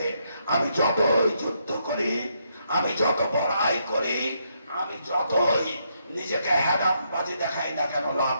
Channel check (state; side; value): inverted; both; correlation -0.77